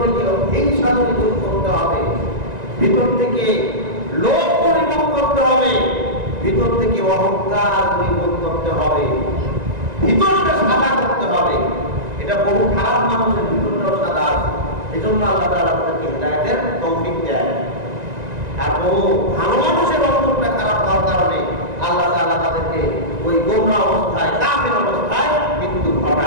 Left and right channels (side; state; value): left; late; 1.9 ms